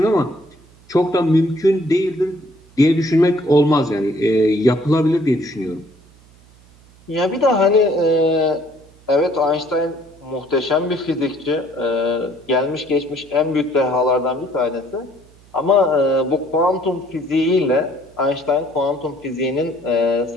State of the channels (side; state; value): right; noise; hum, 27 dB below the sound